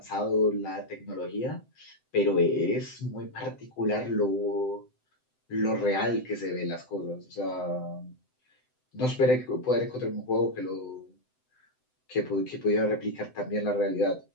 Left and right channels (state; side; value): late; right; 7.8 ms